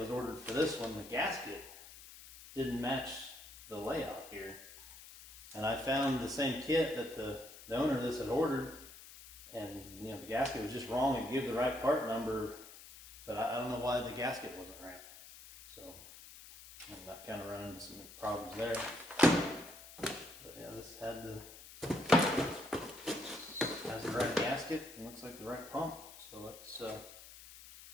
ordered for this one. The gasket didn't match the layout here. And I found the same kit that the owner of this had ordered, and the gasket was just wrong. It gave the right part number, but I don't know why the gasket wasn't right. So that kind of ran into some problems there. But yeah, this has the right gasket and looks like the right pump. So let's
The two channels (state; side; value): noise; left; hiss, 17 dB below the sound